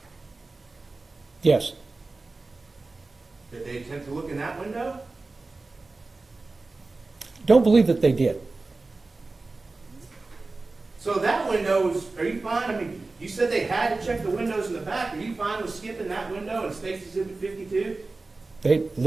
Yes. Did they attempt to look in that window? Don't believe that they did. So that window was, are you fine? I mean, you said they had to check the windows in the back. Are you fine with skipping that window in State's Exhibit 52? They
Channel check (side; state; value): left; quieter; 3.5 dB